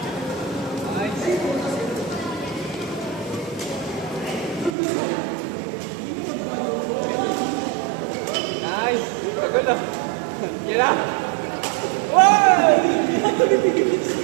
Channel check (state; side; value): drops out; left; at 4.8 s